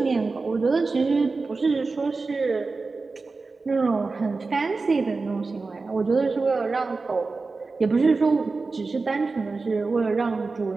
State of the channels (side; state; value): left; quieter; 4.0 dB